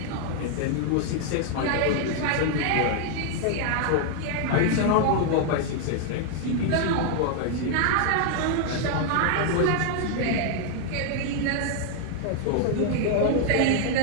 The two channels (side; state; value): both; different; correlation 0.00